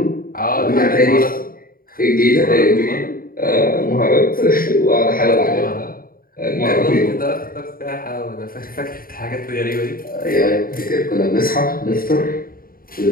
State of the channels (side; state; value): right; late; 0.42 ms